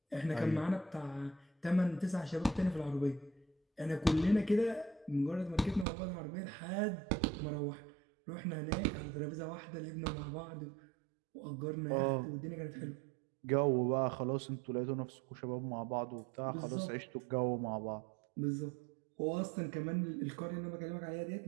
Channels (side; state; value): left; drops out; at 5.9 s